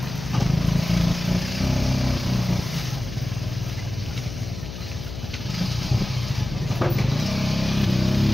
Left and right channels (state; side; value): noise; left; hum, 9 dB below the sound